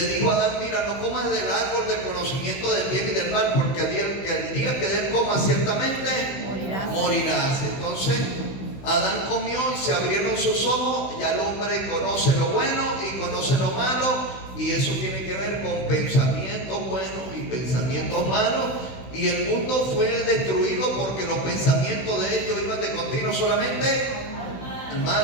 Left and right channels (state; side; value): late; right; 16 ms